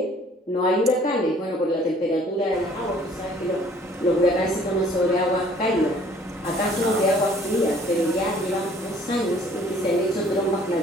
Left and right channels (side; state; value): both; normal; correlation 0.56